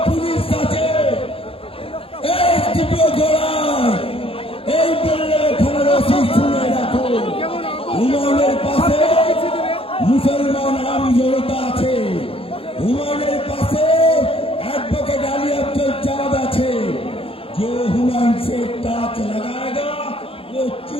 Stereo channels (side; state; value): right; late; 0.27 ms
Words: পুলিশ আছে এই বললে থানার ওসি শুনে রাখো হুমায়ুনের পাশে মুসলমান আম জনতা আছে হুমায়ুনের পাশে एडवोकेट अली अब्दुल चाँद আছে जो हुमायूं से टाच लगाएगा वो